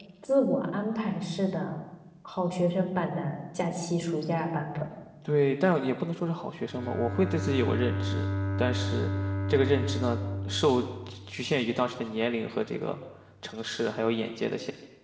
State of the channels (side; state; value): both; identical; correlation 1.00